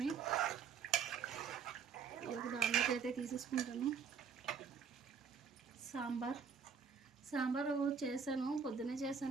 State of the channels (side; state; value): left; quieter; 6.3 dB